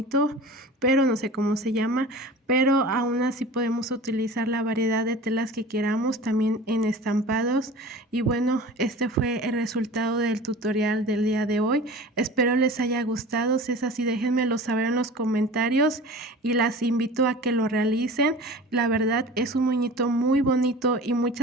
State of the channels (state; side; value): normal; both; correlation 0.38